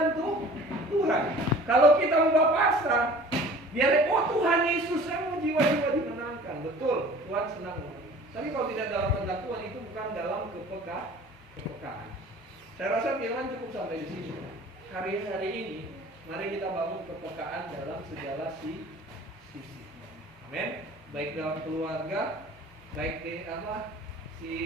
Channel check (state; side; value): normal; both; correlation 0.45